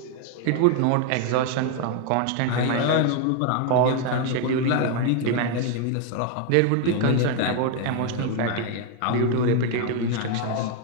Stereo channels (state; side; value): different; both; correlation 0.01